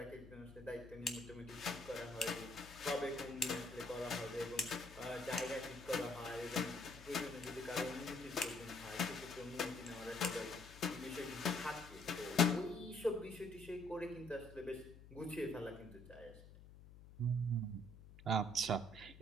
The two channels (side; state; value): left; noise; hum, 17 dB below the sound